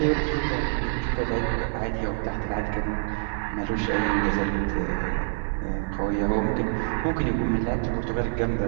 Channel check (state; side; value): silent; left; digital silence